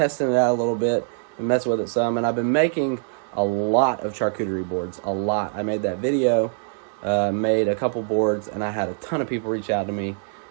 it out a little bit and messing with it some. And I've been making a lot of charcuterie boards, a lot. I made that video, made a couple boards, and I had a ton of people reach out to me.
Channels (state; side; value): silent; left; digital silence